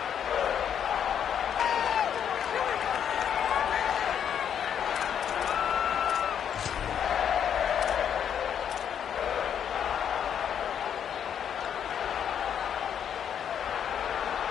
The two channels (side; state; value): right; quieter; 8.7 dB